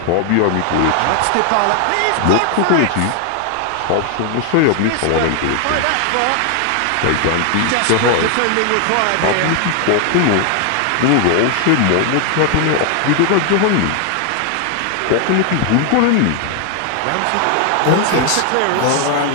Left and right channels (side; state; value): both; different; correlation 0.00